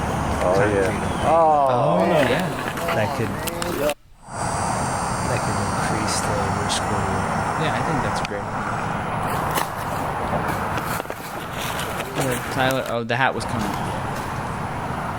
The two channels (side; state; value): both; identical; correlation 1.00